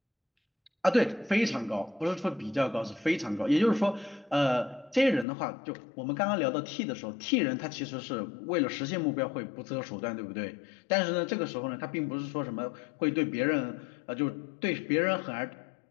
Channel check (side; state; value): right; drops out; at 5.2 s